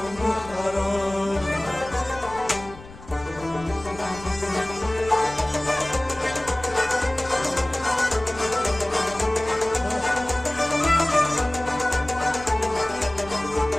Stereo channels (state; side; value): noise; left; rumble, 18 dB below the sound